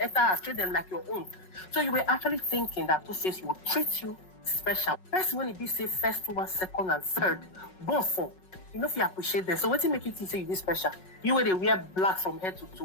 treat them like your own. So you were actually thinking that Two-Face would treat you special. First when it be say first one, second and third, born for. You know if you appreciate them. So what make you think say you this special? You where they wear black from head to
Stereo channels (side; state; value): right; late; 5.4 ms